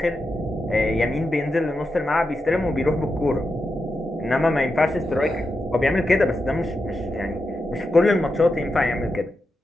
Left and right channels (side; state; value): both; normal; correlation 0.88